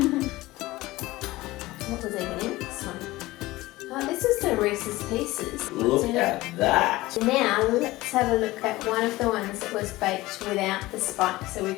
What was even in this one? Oh, this is the Reese's Pieces. Look at that. Now, let's have a look at one of the ones that was baked without the spike so we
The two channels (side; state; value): right; quieter; 18.7 dB